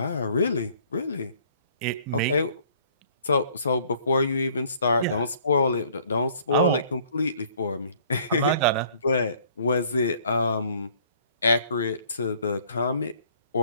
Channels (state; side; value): inverted; both; correlation -0.57